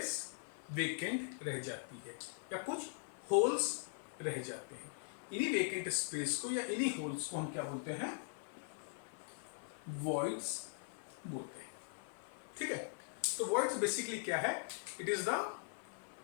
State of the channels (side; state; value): right; silent; 50 dB below the other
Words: वेकेंट रह जाती है या कुछ होल्स रह जाते हैं. इन्हीं वेकेंट स्पेस को या इन्हीं होल्स को हम क्या बोलते हैं, वॉइड्स बोलते हैं. ठीक है. तो वॉइड्स बेसिकली क्या है, इट इज द